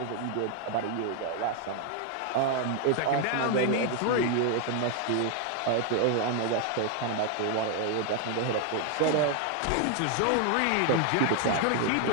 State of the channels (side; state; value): both; different; correlation 0.00